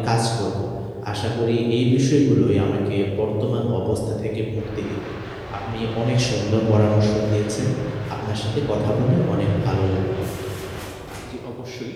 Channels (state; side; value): identical; both; correlation 1.00